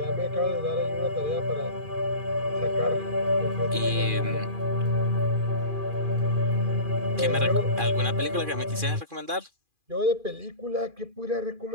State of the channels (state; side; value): late; left; 2.4 ms